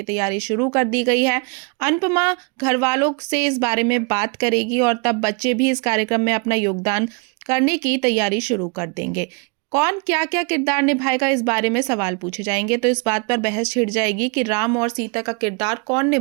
तैयारी शुरू कर दी गई है। अनुपमा घर वालों से इस बारे में बात करेगी और तब बच्चे भी इस कार्यक्रम में अपना योगदान करने की तैयारी शुरू कर देंगे। कौन क्या क्या किरदार निभाएगा, इस बारे में सवाल पूछे जाएंगे तो इस बात पर बहस छिड़ जाएगी कि राम और सीता का किरदार कौन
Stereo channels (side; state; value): left; quieter; 33.3 dB